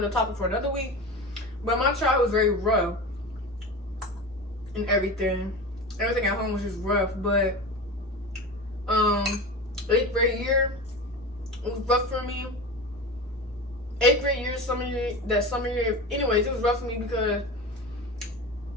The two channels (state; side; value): normal; both; correlation 0.29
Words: topic for another week. But my childhood was very rough and everything. Everything at home was just rough. But 8th grade year was rough for me. 8th grade year, summer year. Anyways, it was rough for me because